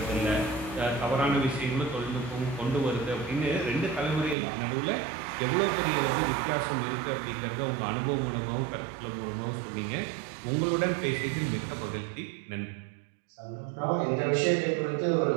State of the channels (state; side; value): drops out; left; at 4.4 s